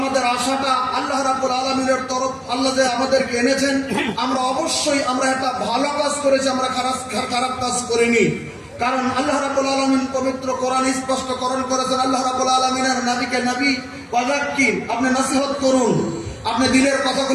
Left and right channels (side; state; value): both; identical; correlation 1.00